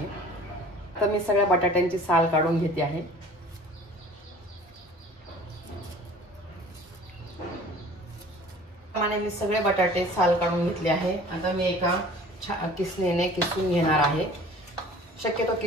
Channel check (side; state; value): both; normal; correlation 0.47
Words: तर मी सगळ्या बटाट्यांची साल काढून घेते आहे। मी सगळे बटाटे साल काढून घेतले आहे। आता मी एका किसणीने किसून घेणार आहे। शक्यतो